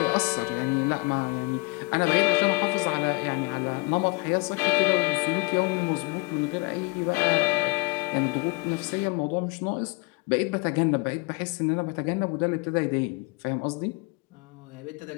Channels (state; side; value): quieter; right; 27.8 dB